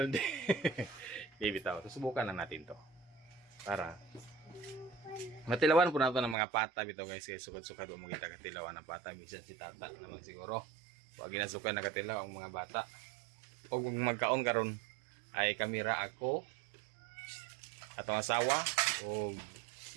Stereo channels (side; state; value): left; drops out; at 6.4 s